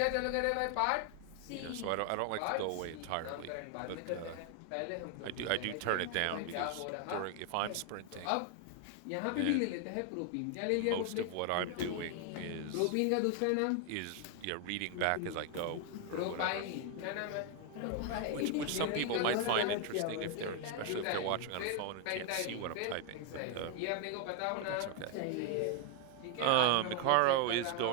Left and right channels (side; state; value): both; different; correlation 0.00